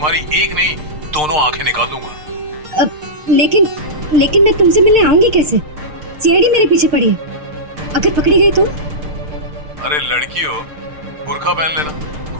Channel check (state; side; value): late; left; 6.6 ms